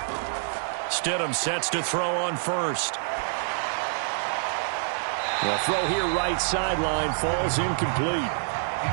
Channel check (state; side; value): silent; left; digital silence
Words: Stidham sets to throw on first. The throw here right sideline falls incomplete.